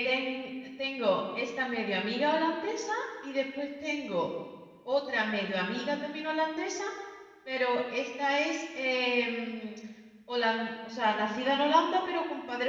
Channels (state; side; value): identical; both; correlation 1.00